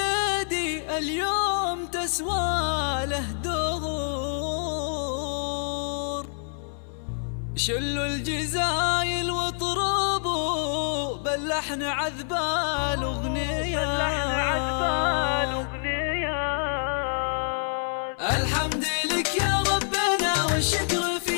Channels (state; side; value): silent; right; 58 dB below the other